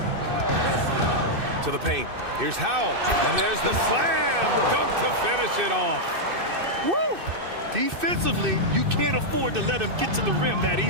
To the paint. Here's Howell. And there's the slam dunk to finish it off. Woo! Defensively, you can't afford to let him get to the rim that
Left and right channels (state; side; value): late; left; 2.6 ms